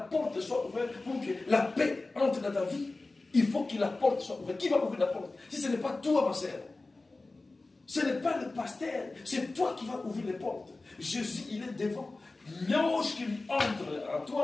soit ouverte pour que la paix entre dans ta vie. Il faut que la porte soit ouverte. Qui va ouvrir la porte? Si ce n'est pas toi, ma sœur. Ce n'est pas le pasteur. C'est toi qui vas ouvrir les portes. Jésus, il est devant. Lorsqu'il entre en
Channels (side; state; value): right; quieter; 3.3 dB